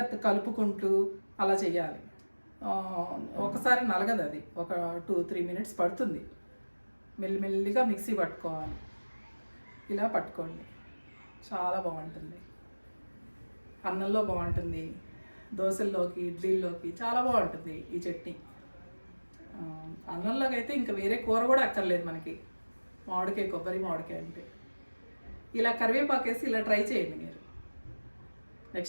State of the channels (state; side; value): inverted; both; correlation -1.00